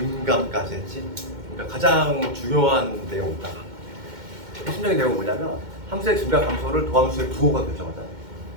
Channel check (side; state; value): left; late; 2.1 ms